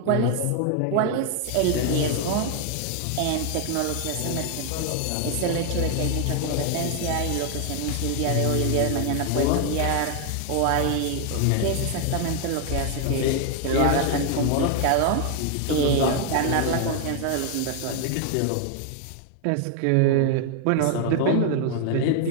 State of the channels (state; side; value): different; both; correlation 0.00